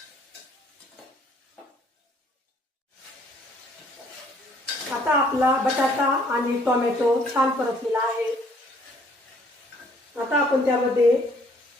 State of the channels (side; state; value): both; normal; correlation 0.62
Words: आता आपला बटाटा आणि टोमॅटो छान परतलेला आहे। आता आपण त्यामध्ये